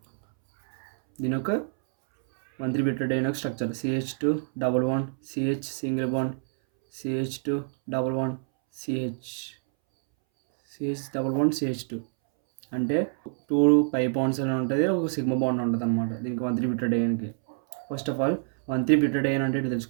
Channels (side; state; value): left; silent; 60 dB below the other